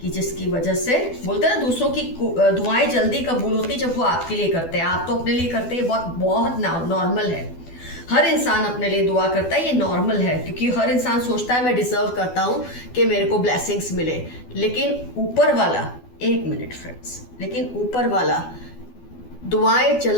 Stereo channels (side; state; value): right; late; 12 ms